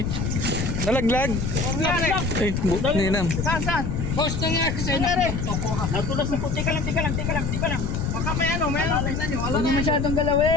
nalaglag. Ay, ninam. Saan? Boss, nangyari sa'yo. Natulas na po. Teka lang. Baka may ano, tingnan nyo. Huwag mo masyadong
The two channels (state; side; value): noise; left; rumble, 2 dB below the sound